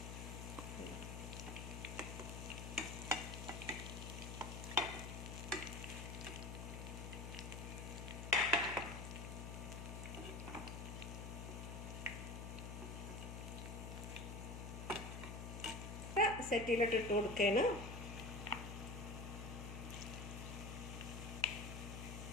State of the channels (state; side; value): noise; left; hum, 6 dB below the sound